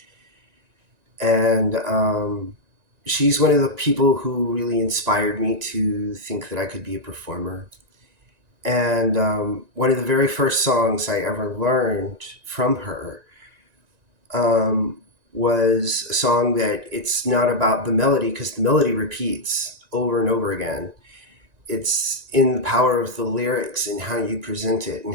And she's one of the people who really inspired me to think that I could be a performer. And one of the very first songs I ever learned from her was a song that it's not about the melody, because the melody repeats over and over again. It's in the power of the lyrics and how you present it and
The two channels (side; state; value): left; late; 1.9 ms